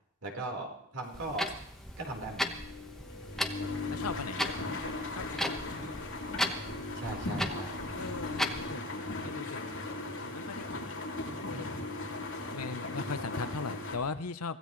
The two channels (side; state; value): both; normal; correlation 0.37